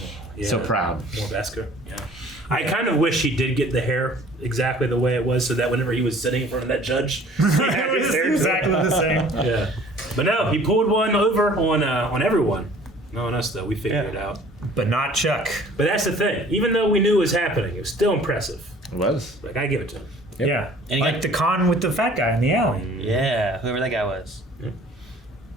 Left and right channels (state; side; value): normal; both; correlation 0.51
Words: Yeah. So proud. More Beskar. Yeah. I kind of wish he did get the hair exactly the way it was, so that whenever he was sitting in front of that judge, he had his hair exactly the same. Yeah. But no, he pulled one over on everyone. No on us though. We figured it out. But not Chuck. But that's the thing. Even though we knew it was happening, it was still impressive. It was. Like, I give it to him. Yep. Yeah. And he like got- the con with the fat guy in the alley. Yeah, whoever that guy was. Yeah.